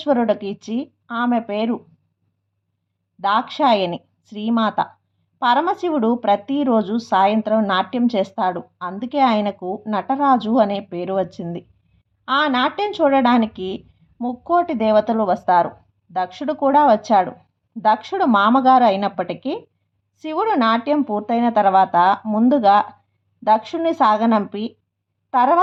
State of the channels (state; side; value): identical; both; correlation 1.00